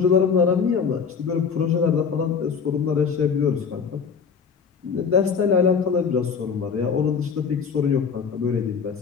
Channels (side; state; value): right; quieter; 6.1 dB